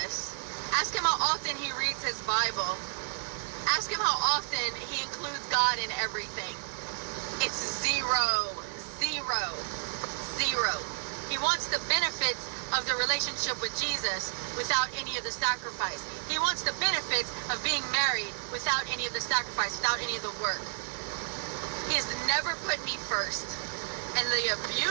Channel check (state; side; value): silent; left; digital silence